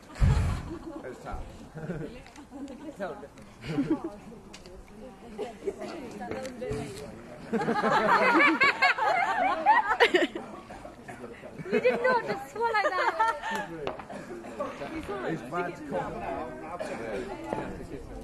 It's Sam. Tell the You did not just swallow that. It's bad to cough.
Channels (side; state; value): both; identical; correlation 1.00